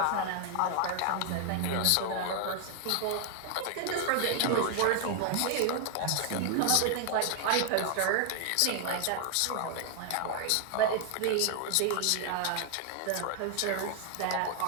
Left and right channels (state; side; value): different; both; correlation 0.00